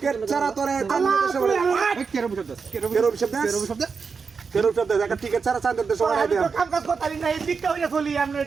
ছাড়া তোরে আল্লাহ কেরো শব্দ একটা টিকেট ছাড়া চাঁদের দেশ ওরা দেয় কাম কাজ করতে না এই দিকটা হইয়া চলি আমরা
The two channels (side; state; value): left; quieter; 5.3 dB